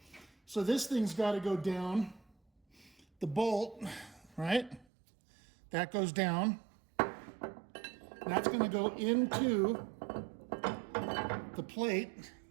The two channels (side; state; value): left; drops out; at 4.9 s